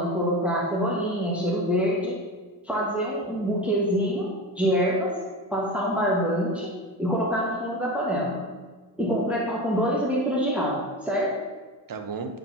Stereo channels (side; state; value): both; normal; correlation 0.26